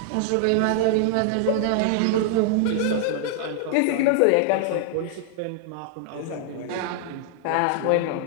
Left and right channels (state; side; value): different; both; correlation 0.00